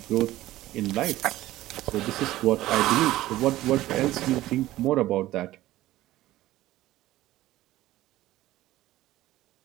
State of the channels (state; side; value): quieter; left; 15.8 dB